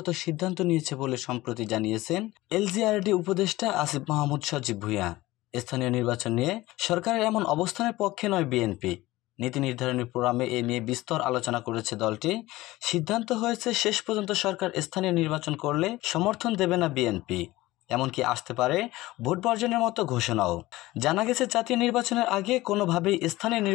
সিদ্ধান্ত নিয়েছে বলে সম্প্রতি জানিয়েছেন এলজিআরডি উপদেষ্টা আসিফ মাহমুদ সজীব ভুঁইয়া। স্থানীয় নির্বাচন নিয়ে সরকারের এমন অবস্থানের পক্ষে নয় বিএনপি। নীতি নির্ধারণী ফোরামে এ নিয়ে বিস্তর আলোচনা করেছে দলটি। সিদ্ধান্ত হয়েছে শেষ পর্যন্ত সরকার স্থানীয় নির্বাচন করলে সমর্থন দেবে না বিএনপি, এমনকি আসতে পারে ভোট বর্জনের মতো ঘোষণাও। জানা গেছে জাতীয় নির্বাচনের আগে কোনোভাবেই স্থানীয়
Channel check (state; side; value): quieter; right; 18.3 dB